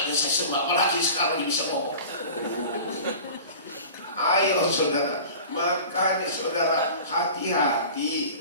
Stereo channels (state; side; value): inverted; both; correlation -0.38